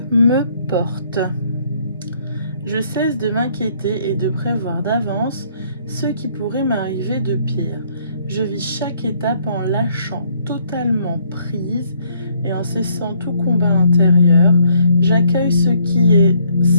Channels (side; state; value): both; inverted; correlation -0.66